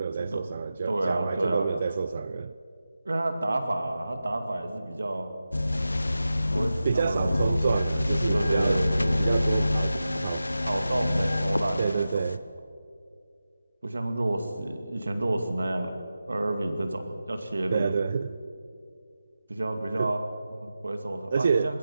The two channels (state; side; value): inverted; both; correlation -0.93